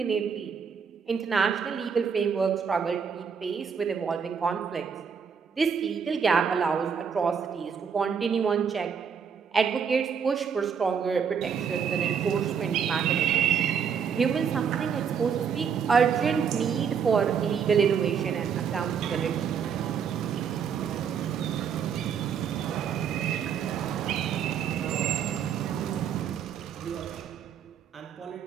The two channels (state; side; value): quieter; left; 7.0 dB